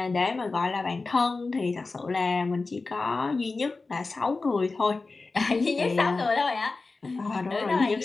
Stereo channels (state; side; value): quieter; right; 3.8 dB